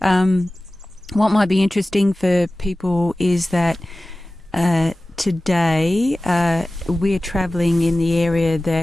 What might be interesting for people is that today we're travelling in the area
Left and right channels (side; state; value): both; normal; correlation 0.97